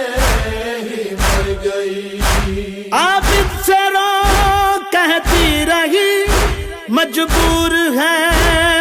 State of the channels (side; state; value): both; identical; correlation 1.00